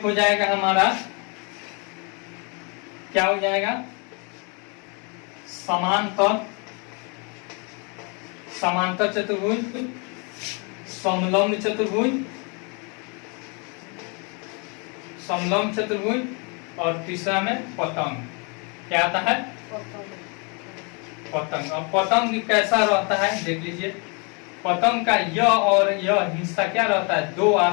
हो जाएगा हमारा, क्या हो जाएगा, समांतर, समांतर चतुर्भुज, समलंब चतुर्भुज, समलंब चतुर्भुज, और तीसरा में पतंग। क्या आता है, पतंग। अब पतंग कैसा रहता है देख लीजिए। पतंग का यह और यह हिस्सा क्या रहता है, दो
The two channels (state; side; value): quieter; right; 34.1 dB